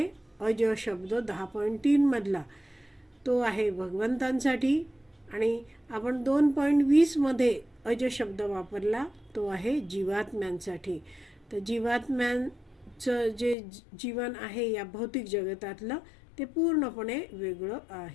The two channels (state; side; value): drops out; right; at 13.6 s